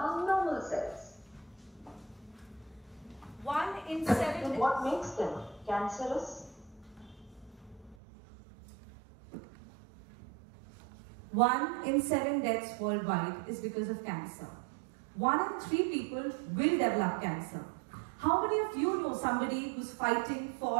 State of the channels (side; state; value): left; drops out; at 8.0 s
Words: normal cells. 1 in 7. And what makes them cancerous? 1 in 7 deaths worldwide is because of cancer. 1 in 3 people will develop cancer. How many of you know somebody who's fighting,